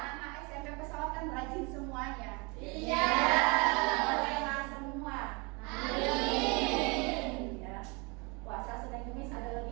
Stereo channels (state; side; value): quieter; left; 29.3 dB